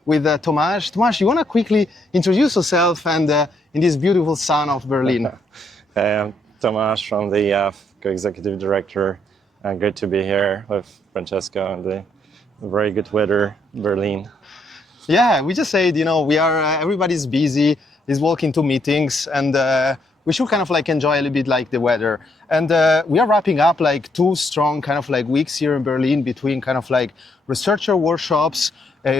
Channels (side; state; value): both; normal; correlation 0.73